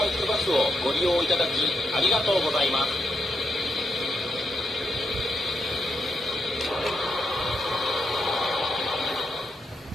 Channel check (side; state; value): both; normal; correlation 0.81